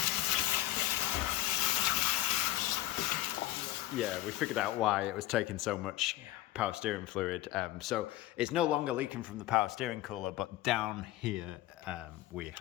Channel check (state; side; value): quieter; right; 15.3 dB